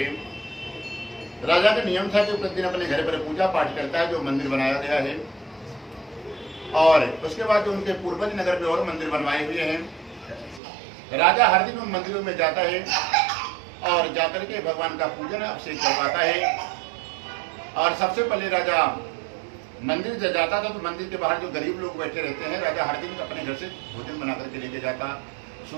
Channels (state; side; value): drops out; left; at 10.6 s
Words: राजा का नियम था कि प्रतिदिन अपने घर पर पूजा पाठ करता है, जो मंदिर बनाया गया है, और उसके बाद जो उनके पूर्वज नगर में और मंदिर बनवाए हुए हैं। राजा हर दिन उन मंदिरों में जाता है और जाकर के भगवान का पूजन अभिषेक करवाता है। और सबसे पहले राजा मंदिर जब जाता था तो मंदिर के बाहर जो गरीब लोग बैठे रहते हैं, राजा हर दिन अपने घर से भोजन बना करके लेके जाता,